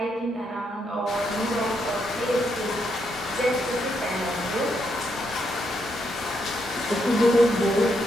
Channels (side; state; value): both; normal; correlation 0.78